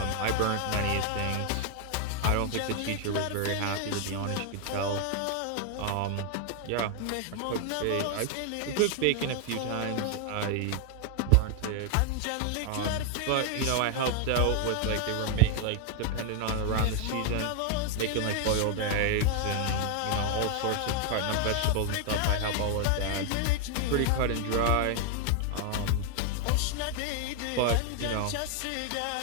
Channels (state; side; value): different; both; correlation 0.00